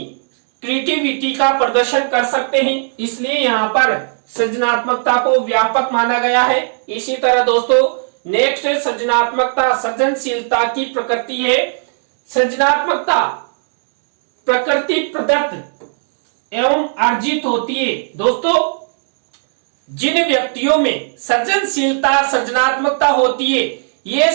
क्रिएटिविटी का प्रदर्शन कर सकते हैं। इसलिए यहाँ पर सृजनात्मकता को व्यापक माना गया है। इसी तरह दोस्तों नेक्स्ट सृजनात्मकता सृजनशीलता की प्रकृति है। सृजनात्मकता प्रकृति प्रदत्त एवं अर्जित होती है। दोस्तों जिन व्यक्तियों में सृजनशीलता सृजनात्मकता होती है, ये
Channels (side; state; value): left; silent; 69 dB below the other